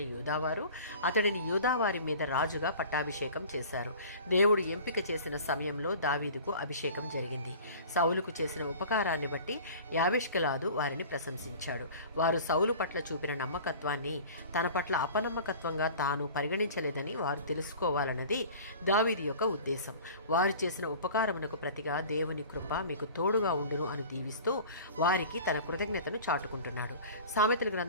యూదావారు అతడిని యూదావారి మీద రాజుగా పట్టాభిషేకం చేశారు. దేవుడు ఎంపిక చేసిన సమయంలో దావీదుకు అభిషేకం జరిగింది. సౌలుకు చేసిన ఉపకారాన్ని బట్టి యాబేష్గిలాదు వారిని ప్రశంసించాడు. వారు సౌలు పట్ల చూపిన నమ్మకత్వాన్ని తన పట్ల అపనమ్మకత్వంగా తాను పరిగణించలేదని వారు తెలుసుకోవాలన్నది దావీదు యొక్క ఉద్దేశం. వారు చేసిన ఉపకారమునకు ప్రతిగా దేవుని కృప మీకు తోడుగా ఉండును అని దీవిస్తూ వారికి తన కృతజ్ఞతను చాటుకుంటున్నాడు. సామెతల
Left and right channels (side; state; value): both; inverted; correlation -0.42